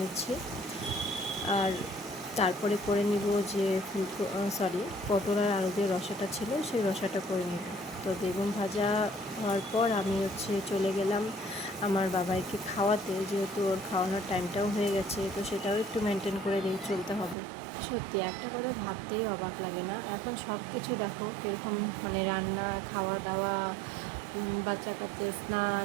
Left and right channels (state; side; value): drops out; left; at 17.4 s